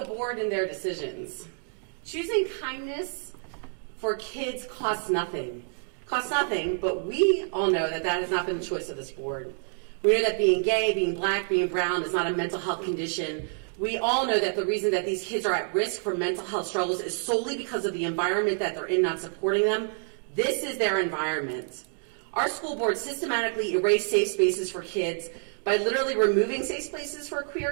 board and their decisions. Choosing kindness for kids costs nothing. Costs nothing, but we all know that that has not been the choice of this board. We know that being gay, being black, being brown is not a mental health condition. We all know that the reason that these kids are at risk for mental health struggles is solely because of the environment that they're in, not supporting them. This is their environment. Our school board systematically erased safe spaces for kids by literally removing safe spaces for queer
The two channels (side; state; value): left; silent; 57 dB below the other